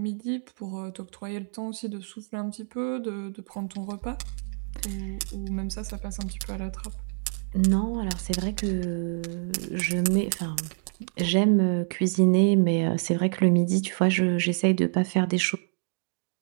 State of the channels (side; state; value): left; silent; 60 dB below the other